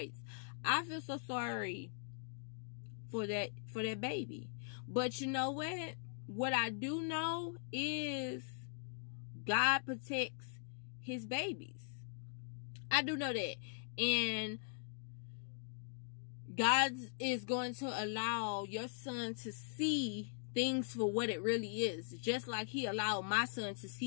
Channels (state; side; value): silent; right; digital silence